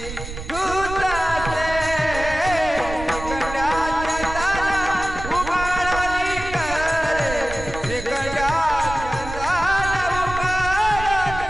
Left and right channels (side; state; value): right; noise; rumble, 9 dB below the sound